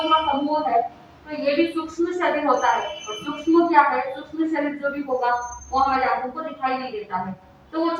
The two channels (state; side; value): identical; both; correlation 1.00